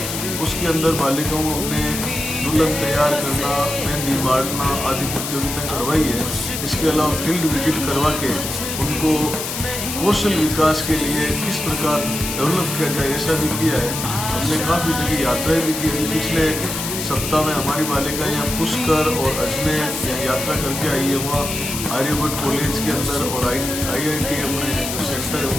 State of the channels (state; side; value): noise; left; hiss, 5 dB below the sound